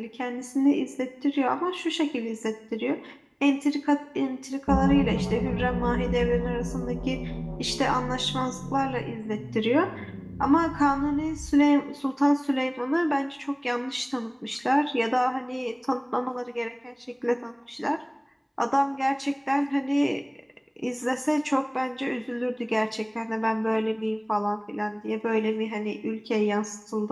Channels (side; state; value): both; identical; correlation 1.00